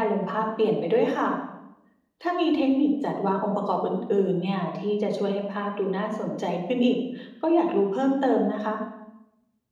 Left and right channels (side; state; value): both; identical; correlation 1.00